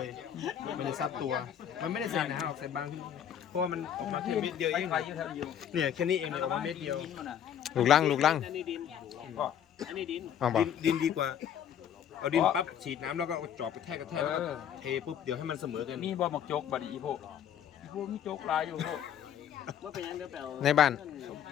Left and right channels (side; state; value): right; quieter; 9.4 dB